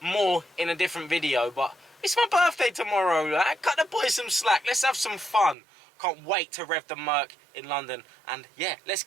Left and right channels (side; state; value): left; drops out; at 5.6 s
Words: more in a different video. But it's my birthday tomorrow, like. Cut the boys some slack. Let's have some fun. Can't wait to rev the Merc in London. And yeah, let's